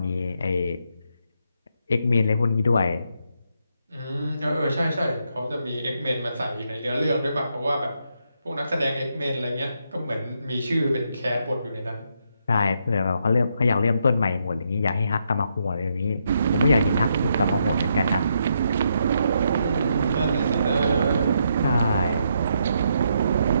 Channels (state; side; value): inverted; both; correlation -0.78